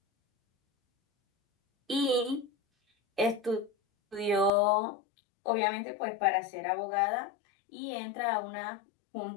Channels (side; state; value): right; drops out; at 4.5 s